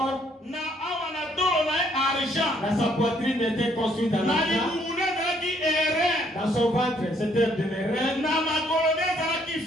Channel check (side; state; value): both; normal; correlation 0.67